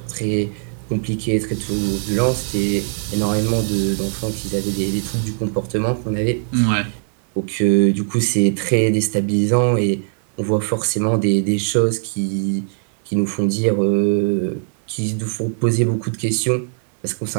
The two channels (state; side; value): silent; left; digital silence